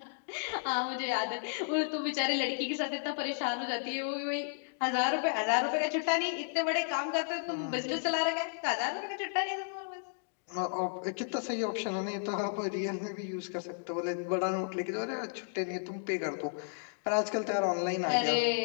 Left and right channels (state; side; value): silent; right; digital silence